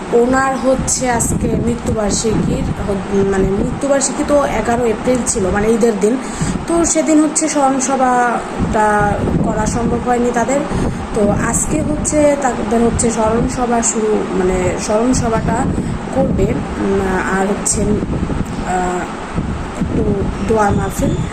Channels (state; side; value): identical; both; correlation 1.00